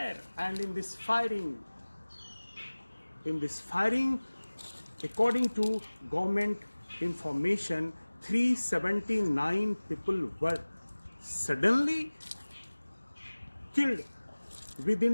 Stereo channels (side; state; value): both; inverted; correlation -1.00